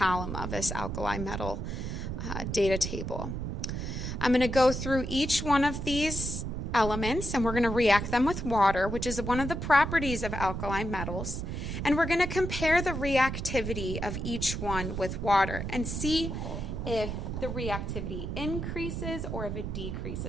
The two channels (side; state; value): right; noise; rumble, 4 dB below the sound